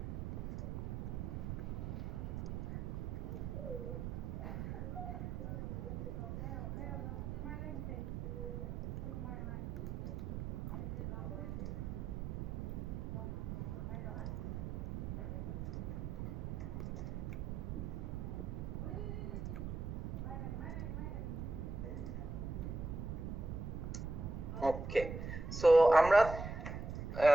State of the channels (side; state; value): right; noise; rumble, 4 dB below the sound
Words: ওকে, সো আমরা